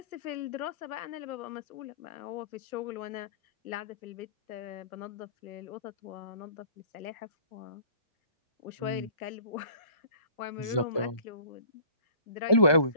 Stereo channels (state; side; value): late; right; 1.2 ms